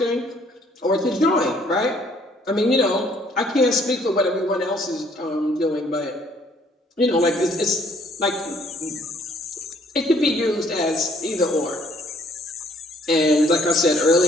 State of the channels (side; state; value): both; normal; correlation 0.62